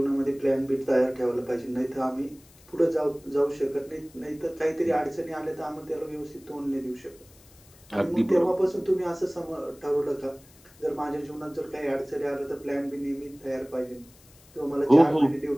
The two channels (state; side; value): noise; left; hiss, 26 dB below the sound